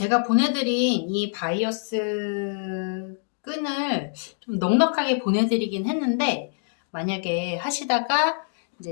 보내드린 이 바이어스 끈을 좀 넉넉하게 보내드리긴 했는데, 만약에 하시다가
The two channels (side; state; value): right; silent; digital silence